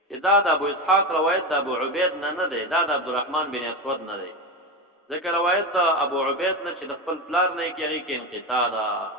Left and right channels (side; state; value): both; normal; correlation 0.18